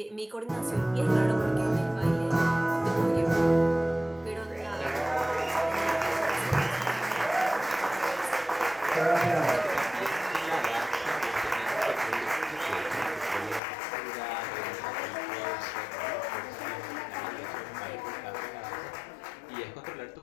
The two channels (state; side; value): drops out; right; at 13.6 s